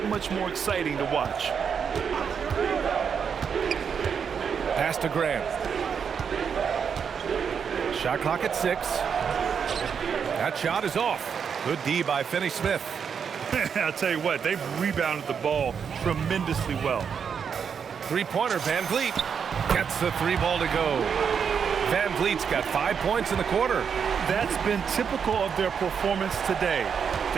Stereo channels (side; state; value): left; quieter; 6.9 dB